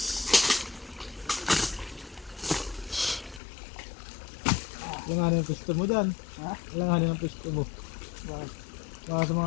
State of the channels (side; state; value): right; drops out; at 3.4 s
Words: Langanin ang pwesto mo dyan. Ha? Langanin ang pwesto mo. Baka sa